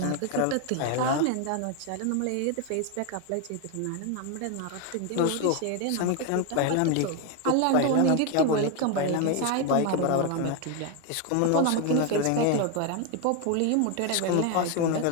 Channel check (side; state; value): both; different; correlation 0.01